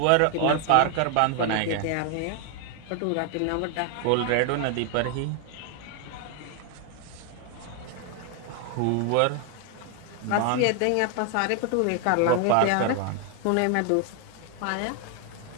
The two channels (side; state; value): both; different; correlation 0.01